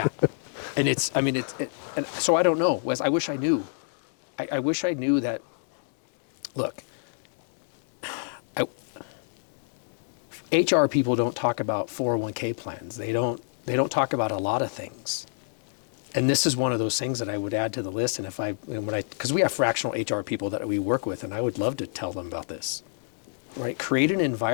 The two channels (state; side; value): silent; right; digital silence